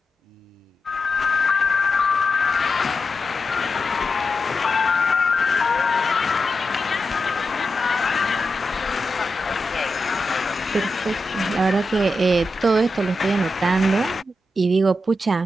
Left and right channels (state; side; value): normal; both; correlation 0.88